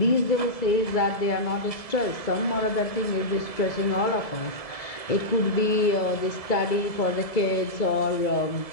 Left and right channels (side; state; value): right; late; 1.7 ms